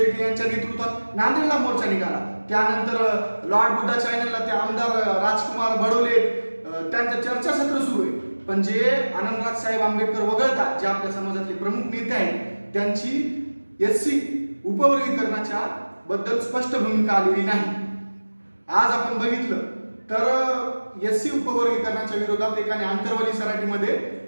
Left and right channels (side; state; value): both; inverted; correlation -1.00